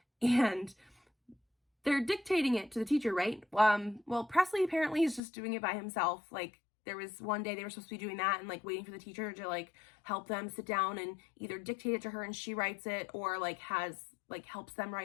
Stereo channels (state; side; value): drops out; right; at 5.2 s